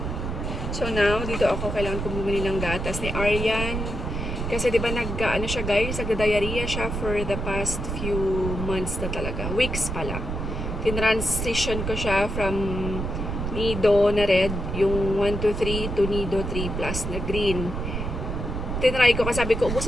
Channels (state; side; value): noise; right; rumble, 4 dB below the sound